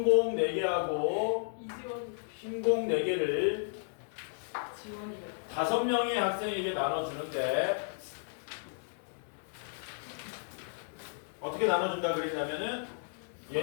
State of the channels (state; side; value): silent; right; digital silence